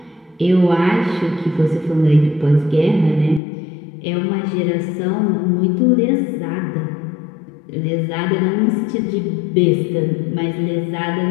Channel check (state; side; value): drops out; right; at 3.4 s